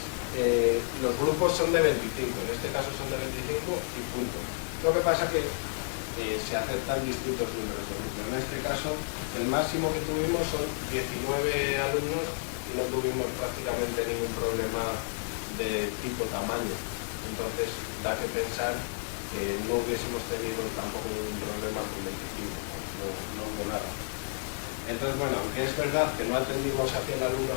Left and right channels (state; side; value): silent; right; digital silence